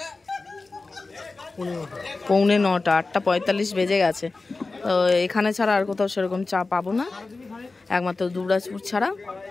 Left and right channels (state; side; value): quieter; right; 3.6 dB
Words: 8:45, 8:45 বেজে গেছে। তো এখানে ছাড়া আর কোথাও সেরকম চা পাবো না, একমাত্র দুবরাজপুর ছাড়া,